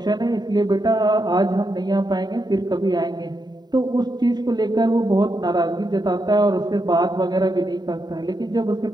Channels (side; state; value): left; late; 0.20 ms